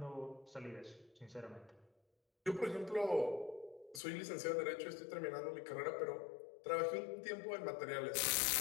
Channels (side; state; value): right; drops out; at 4.0 s